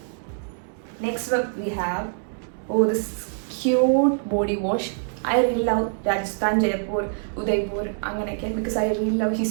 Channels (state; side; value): silent; left; digital silence